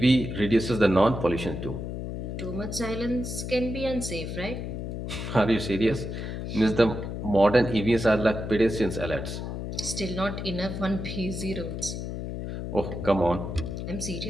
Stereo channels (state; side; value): noise; left; hum, 5 dB below the sound